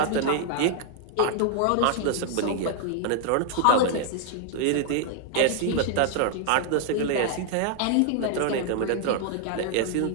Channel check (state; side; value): different; both; correlation 0.00